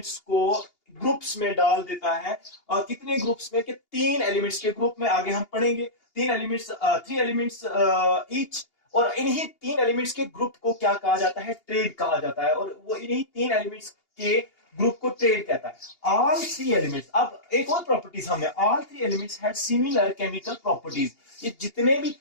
को ग्रुप्स में डाल देता है। और कितने ग्रुप्स में? कि 3 एलिमेंट्स के ग्रुप में। आगे हम पढ़ेंगे 3 एलिमेंट्स ईच। और इन्हीं 3 एलिमेंट्स के ग्रुप को क्या कहा जाता है? ट्रेड कहा जाता है। और वो इन्हीं 3 एलिमेंट्स के ग्रुप को ट्रेड कहता है। ऑल 3 एलिमेंट्स, अब एक और प्रॉपर्टीज हमने, all 3 elements had similar chemical properties. ये जितने भी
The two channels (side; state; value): right; late; 2.8 ms